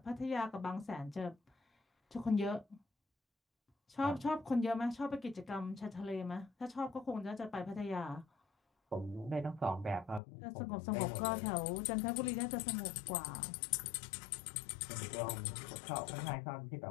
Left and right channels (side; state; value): right; drops out; at 10.2 s